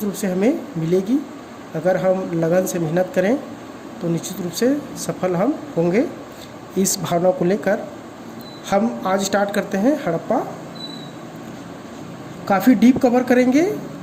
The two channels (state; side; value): identical; both; correlation 1.00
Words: रूप से हमें मिलेगी। अगर हम लगन से मेहनत करें तो निश्चित रूप से सफल हम होंगे। इस भावना को लेकर हम आज स्टार्ट करते हैं हड़प्पा। काफ़ी डीप कवर करेंगे